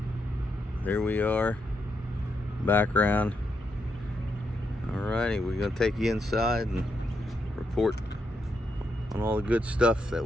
There we are. Background. Alrighty, we're gonna take you inside and report on all the good stuff that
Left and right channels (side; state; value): both; normal; correlation 0.81